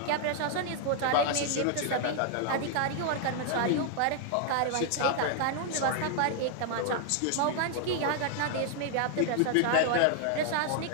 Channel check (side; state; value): both; different; correlation 0.00